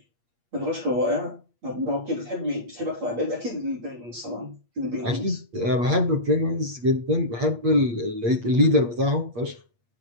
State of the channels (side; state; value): left; late; 8.5 ms